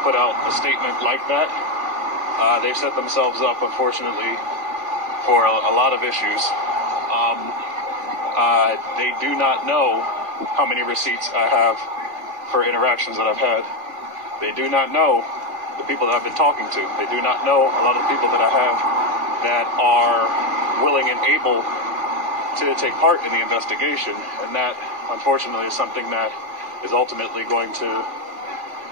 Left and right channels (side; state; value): left; late; 2.4 ms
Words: put out a statement like that. They've set themselves up, unfortunately, for a lot of issues. They do not know how many receipts I have for interactions that I've had. They do not know the people that I've been talking to. They do not know a lot of the people that I have that are willing and able to take part in the investigation. And that, unfortunately, is something that is ultimately going to...